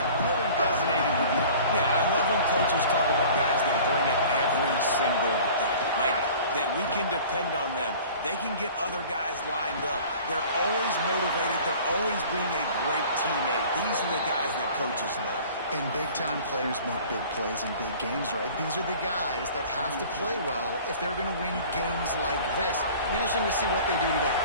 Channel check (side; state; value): both; inverted; correlation -0.45